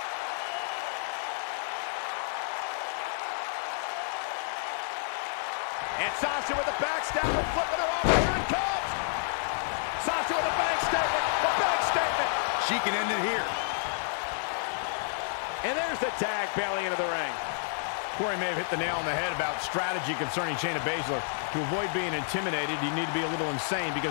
And Sasha with a backstabber, flipping her over. Here it comes. Sasha with a backstatement. A backstatement. She can end it here. And there's the tag, Bayley into the ring. Corey may have hit the nail on the head about strategy concerning Shayna Baszler. To avoid being intimidated, you need to be a little insane,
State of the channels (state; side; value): silent; right; digital silence